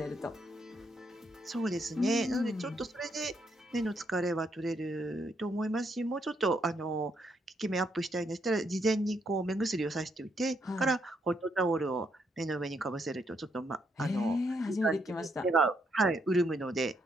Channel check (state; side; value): normal; both; correlation 0.75